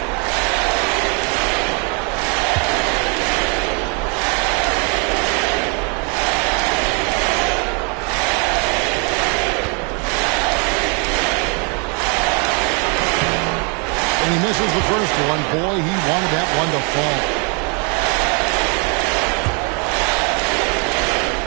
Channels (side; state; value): left; quieter; 35.7 dB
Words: He misses the first one. Boy, he wanted that one to fall.